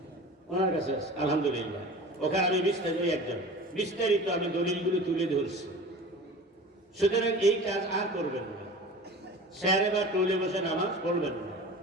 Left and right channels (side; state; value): both; normal; correlation 0.38